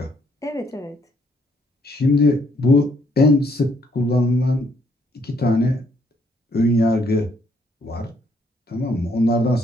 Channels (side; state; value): both; normal; correlation 0.69